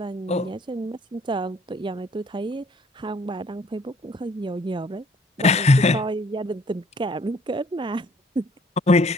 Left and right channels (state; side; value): normal; both; correlation 0.60